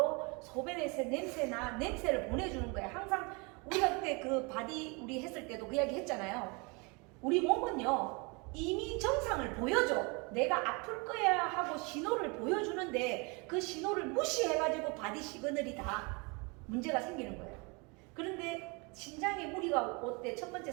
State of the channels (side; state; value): left; quieter; 30.1 dB